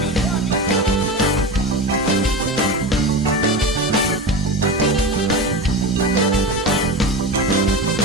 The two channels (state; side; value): normal; both; correlation 0.25